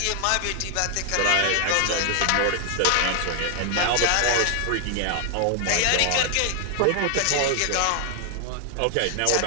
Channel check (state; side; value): different; both; correlation 0.00